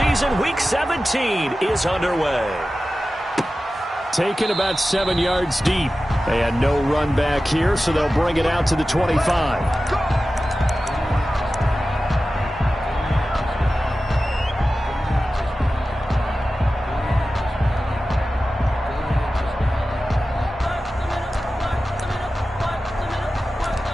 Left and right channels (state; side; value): normal; both; correlation 0.94